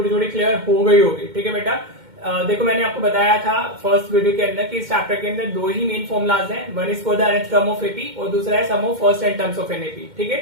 थोड़ी क्लियर हो गई होगी। ठीक है बेटा, देखो मैंने आपको बताया था फर्स्ट वीडियो के अंदर कि इस चैप्टर के अंदर दो ही मेन फॉर्मुलाज हैं, one is for the nth term of AP और दूसरा है sum of first n terms of an AP. ठीक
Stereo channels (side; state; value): left; late; 2.1 ms